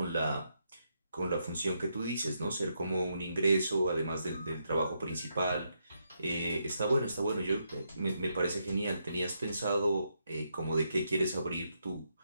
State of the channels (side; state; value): both; inverted; correlation -0.80